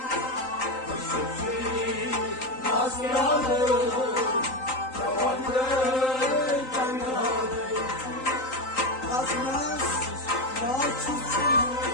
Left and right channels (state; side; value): late; right; 3.9 ms